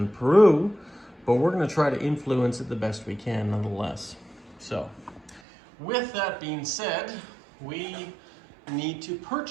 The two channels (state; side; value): drops out; left; at 5.4 s